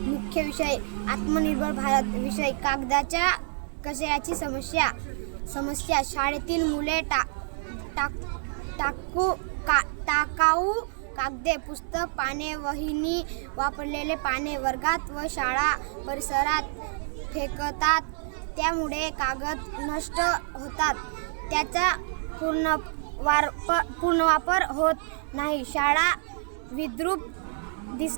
विषय आत्मनिर्भर भारत. विषय कागदाच्या कचऱ्याची समस्या. शाळेतील मुले टाकाऊ कागदे, पुस्तक, पाने, वहीनी, वापरलेले पाने वर्गात व शाळा परिसरात फेकतात. त्यामुळे कागद नष्ट होतात. त्याचा पुनर्वापर होत नाही. शाळा विद्रूप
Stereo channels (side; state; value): left; silent; digital silence